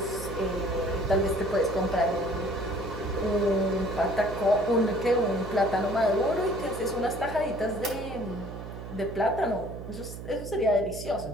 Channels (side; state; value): right; noise; hum, 10 dB below the sound